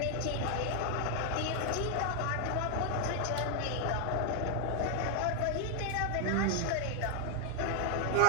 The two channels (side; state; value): both; different; correlation 0.00